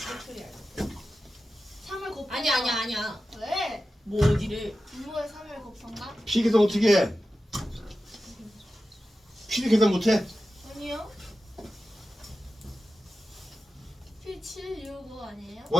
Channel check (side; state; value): both; normal; correlation 0.93